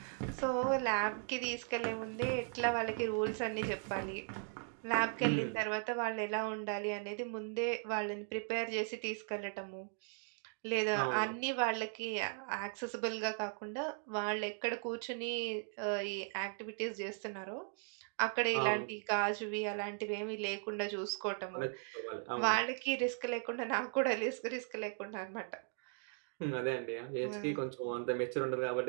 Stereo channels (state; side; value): silent; left; 52 dB below the other